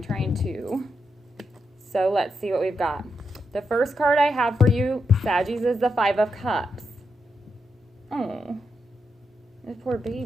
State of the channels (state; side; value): normal; both; correlation 0.84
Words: trying to. So let's see what we've got. The first card I have for you, Saggies, is the 5 of Cups. Oh, this poor